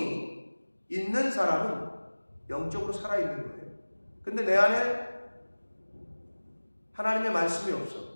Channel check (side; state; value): both; inverted; correlation -1.00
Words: 있는 사람은 영적으로 살아있는 거예요. 근데 내 안에 하나님의 말씀이